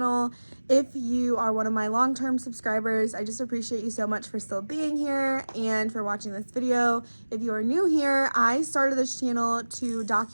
If you are one of my long-term subscribers, I just appreciate you so much for still being here and for watching this video. If you are new here, I started this channel to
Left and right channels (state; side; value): inverted; both; correlation -1.00